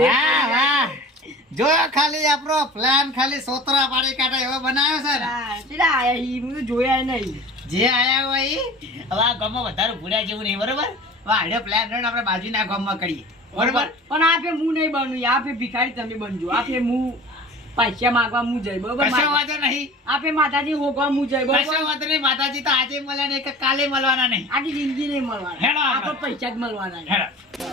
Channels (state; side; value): normal; both; correlation 0.40